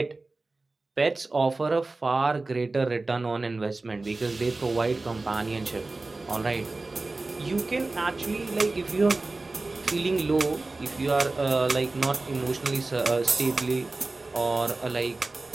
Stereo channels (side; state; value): left; quieter; 3.3 dB